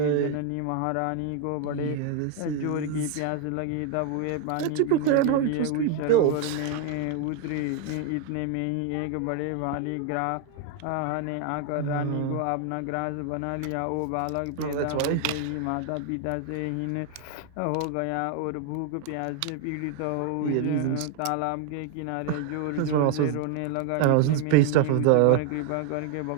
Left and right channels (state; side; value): different; both; correlation 0.00